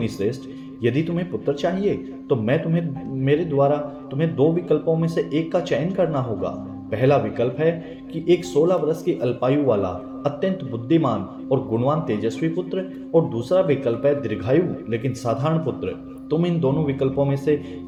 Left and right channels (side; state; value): both; identical; correlation 1.00